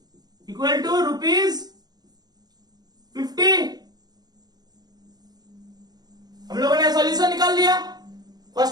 equal to ₹50। हम लोगों ने सॉल्यूशन निकाल लिया,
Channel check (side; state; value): left; late; 0.19 ms